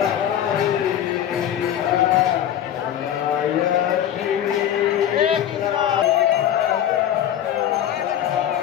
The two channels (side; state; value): right; quieter; 10.6 dB